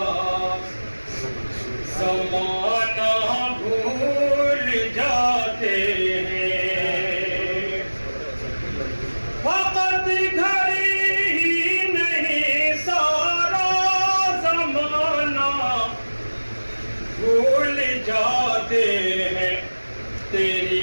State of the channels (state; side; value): inverted; both; correlation -1.00